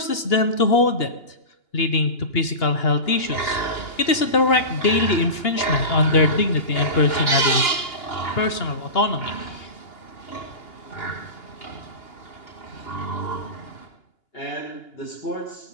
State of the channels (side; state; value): right; late; 2.8 ms